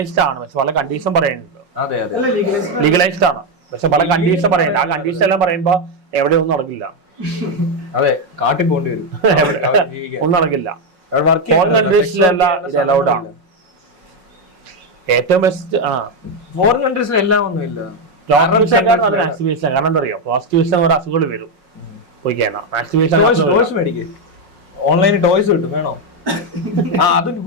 ആണ്, പക്ഷെ പല കണ്ടീഷൻ പറയുന്നുണ്ട്. അതെ അതെ, ലീഗലൈസ്ഡ് ആണ്, പക്ഷെ പല കണ്ടീഷൻ പറയുന്നുണ്ട്. ആ കണ്ടീഷൻ എല്ലാം പറയുമ്പോ എവിടെ ഒന്നും നടക്കില്ല. അതെ, കാട്ടിൽ പോകേണ്ടി വരും. ഒന്നും നടക്കില്ല. ഫോറിൻ കൺട്രീസിലെല്ലാം ഇത് അലൗഡ് ആണ്. ഏറ്റവും ബെസ്റ്റ് ഫോറിൻ കൺട്രീസിൽ എല്ലാം ഒന്നുമില്ല. മാക്സിമേഷൻ. കാരണം എന്താ അറിയോ, പ്രോസ്റ്റിറ്റ്യൂഷൻ ഒരു അസുഖങ്ങൾ വരും. പോയിക്കാണോ മാക്സിമേഷൻ മേടിക്കും. ഓൺലൈനിൽ ടോയ്സ് കിട്ടും, വേണോ? അത്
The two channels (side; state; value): left; late; 5.5 ms